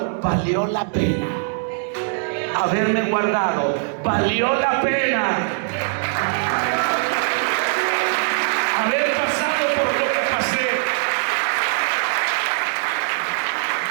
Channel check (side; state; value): left; silent; digital silence